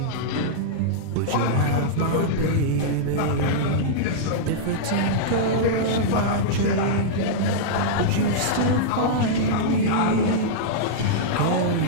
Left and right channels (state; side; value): different; both; correlation -0.03